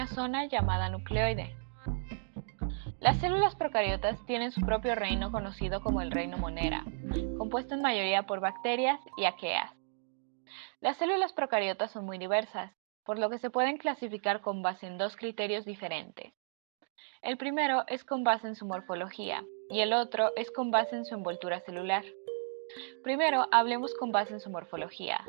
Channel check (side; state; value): left; silent; digital silence